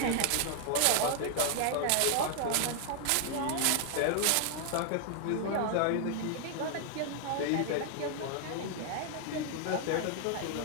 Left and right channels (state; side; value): different; both; correlation 0.00